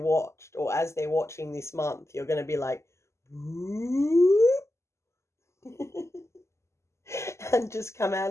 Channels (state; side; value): late; right; 0.13 ms